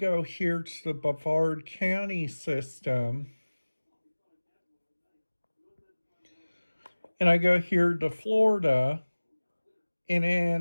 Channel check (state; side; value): inverted; both; correlation -1.00